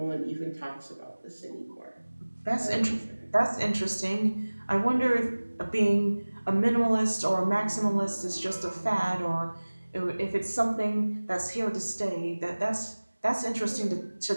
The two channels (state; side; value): inverted; both; correlation -1.00